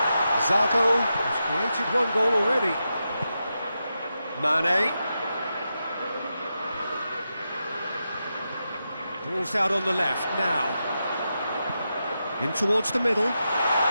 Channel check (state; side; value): inverted; both; correlation -0.88